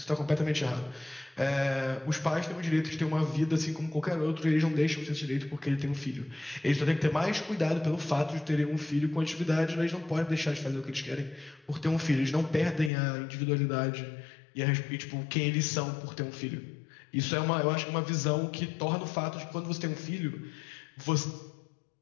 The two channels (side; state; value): right; drops out; at 12.9 s